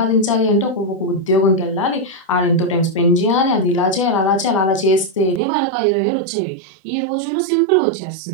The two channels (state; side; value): drops out; left; at 5.4 s